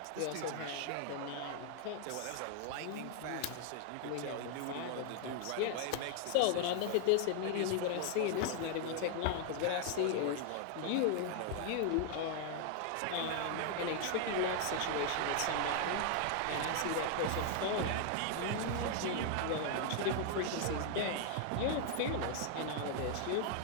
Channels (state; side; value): different; both; correlation 0.00